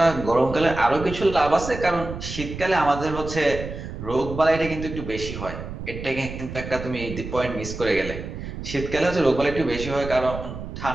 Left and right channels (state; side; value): noise; right; rumble, 9 dB below the sound